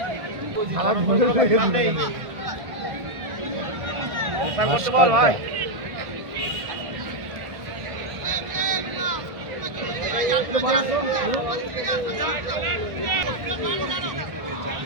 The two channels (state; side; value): late; left; 1.5 ms